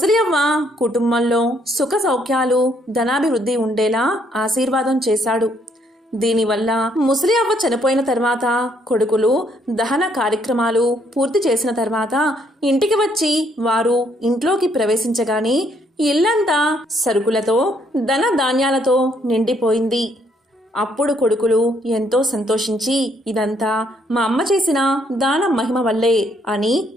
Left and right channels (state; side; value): normal; both; correlation 0.69